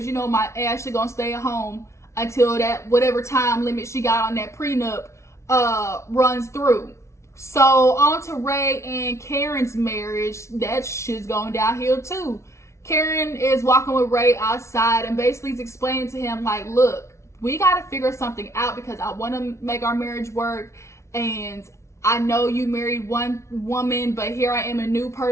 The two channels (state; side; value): late; right; 0.13 ms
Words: you know my Ashley gonna stay at home until that whatever time limit she got on that prenup runs through. So on to Ray and Karen's marriage. That shit's going downhill too. Karen is walking with Ray outside and basically is explaining to him like, look, we gotta figure something out because I want to make our marriage work, and I know you married one woman, but here I am a new